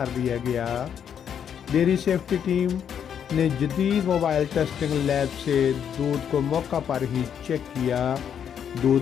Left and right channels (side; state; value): right; quieter; 8.4 dB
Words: दिया गया। डेयरी सेफ्टी टीम ने जदीद मोबाइल टेस्टिंग लैब से दूध को मौका पर ही चेक किया।